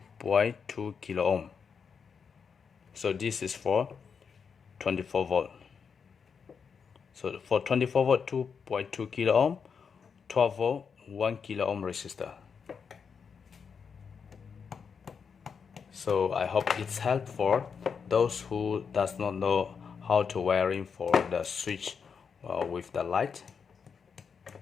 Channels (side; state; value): right; quieter; 6.2 dB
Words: kilo ohm. So this is for 24 volt. So for 24 volt, 2.2 kilo ohm, 12 volt, 1 kilo ohm resistor. So I hope it's helpful for those who does not know how to wiring for the switch with the light,